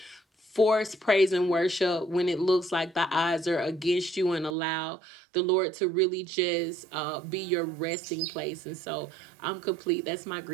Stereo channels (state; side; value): drops out; left; at 4.5 s